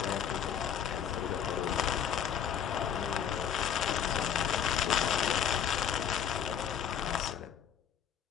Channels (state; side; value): quieter; right; 8.4 dB